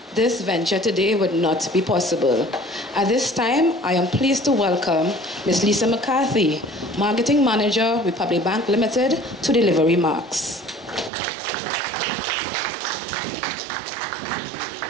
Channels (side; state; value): left; drops out; at 11.1 s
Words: this venture today would not be possible. At this time, I am pleased to welcome Ms. Lisa McCarthy, Marketing Manager, Republic Bank Limited, to deliver remarks.